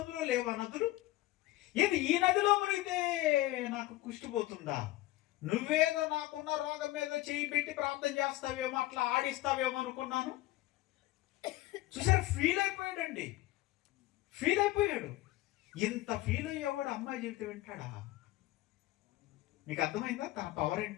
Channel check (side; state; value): right; quieter; 17.2 dB